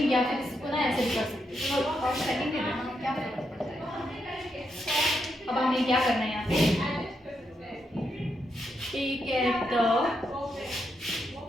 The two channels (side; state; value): both; normal; correlation 0.82